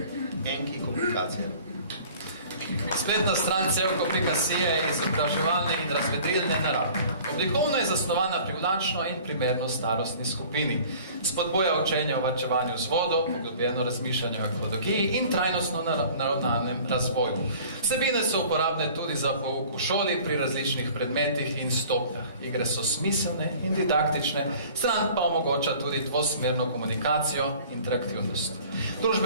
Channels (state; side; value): inverted; both; correlation -0.47